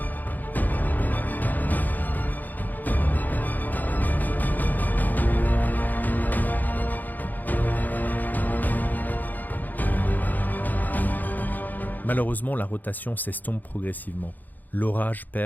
Malheureusement, la rotation s'estompe progressivement. L'orage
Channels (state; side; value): late; right; 0.084 ms